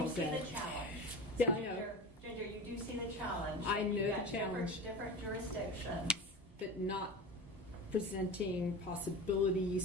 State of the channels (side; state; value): both; normal; correlation 0.29